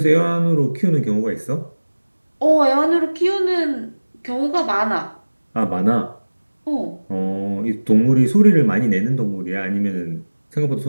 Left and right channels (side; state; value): both; inverted; correlation -1.00